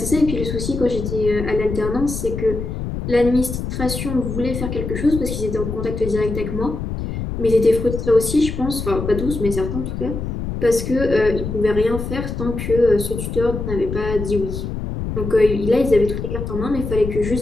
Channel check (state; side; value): noise; left; rumble, 5 dB below the sound